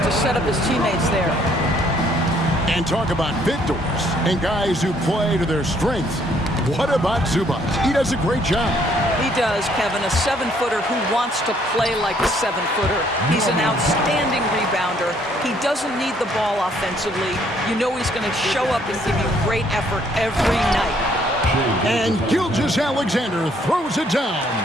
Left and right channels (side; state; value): both; normal; correlation 0.65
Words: set up his teammates there. And talk about victors and guys who play to their strengths. What about Zubac? He does a great job. He does, Kevin, a 7-footer who wants to play like a 7-footer. He's an outstanding rebounder. He doesn't need the ball offensively. You know he's going to show up and give you great effort every night. And Gilgeous-Alexander throws it down.